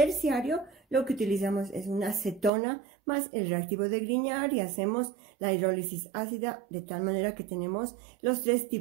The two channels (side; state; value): left; drops out; at 2.5 s